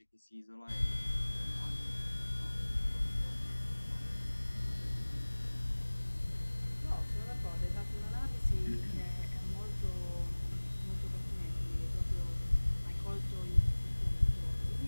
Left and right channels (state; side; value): inverted; both; correlation -1.00